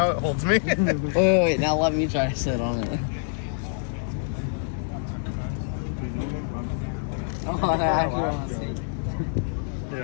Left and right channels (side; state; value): right; silent; digital silence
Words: it holds me. Wait, now let me try to sit on it. Oh, I actually want to see.